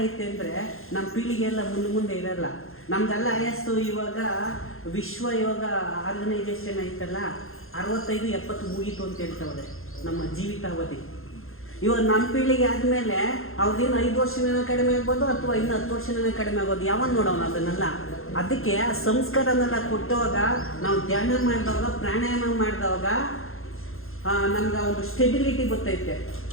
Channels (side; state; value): right; late; 0.61 ms